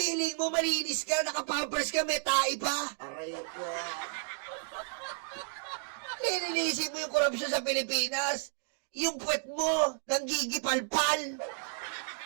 mo malinis ka, naka-pampers ka, may tae pa! Aray ko. Lilinisin mo yung korupsyon sa Pilipinas! Yung puwet mo, nanggigipalpal!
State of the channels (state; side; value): silent; left; 56 dB below the other